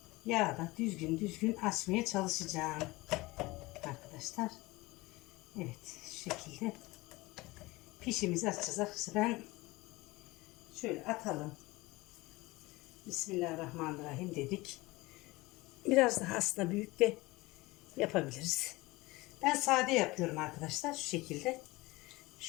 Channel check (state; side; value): quieter; right; 21.4 dB